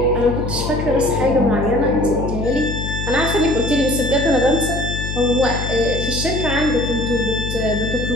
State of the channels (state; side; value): noise; left; hum, 4 dB below the sound